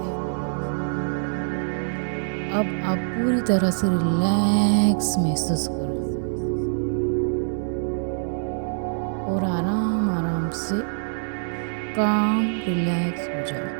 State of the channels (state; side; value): silent; left; digital silence